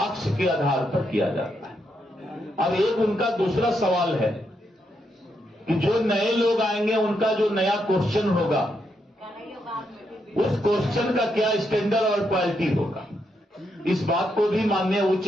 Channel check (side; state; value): both; normal; correlation 0.80